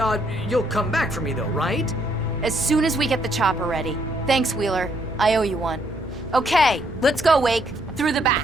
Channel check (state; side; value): normal; both; correlation 0.71